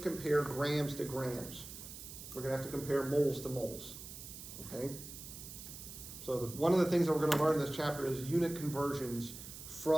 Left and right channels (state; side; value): noise; right; hiss, 12 dB below the sound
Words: compare grams to grams. We're gonna have to compare moles to moles, okay? So one of the things that we're gonna learn in this chapter is unit conversions